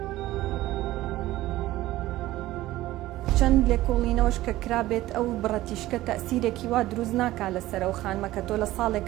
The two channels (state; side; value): quieter; left; 16.2 dB